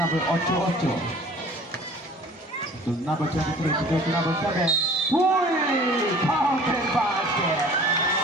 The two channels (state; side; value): normal; both; correlation 0.47